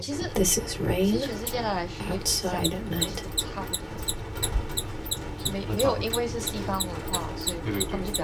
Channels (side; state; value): both; identical; correlation 1.00